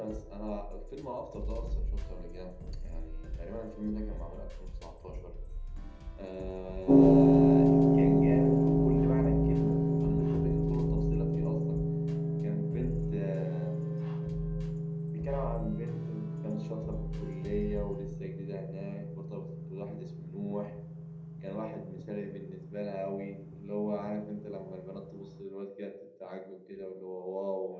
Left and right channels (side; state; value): both; identical; correlation 1.00